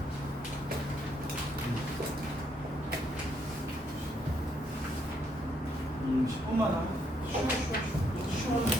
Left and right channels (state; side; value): normal; both; correlation 0.73